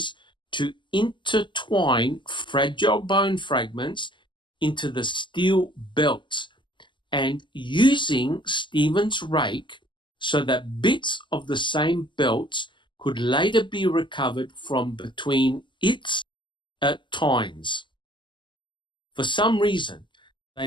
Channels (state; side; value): late; right; 0.23 ms